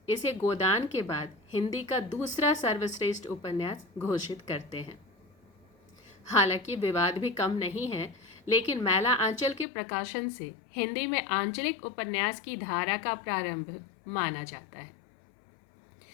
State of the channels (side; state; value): right; drops out; at 9.7 s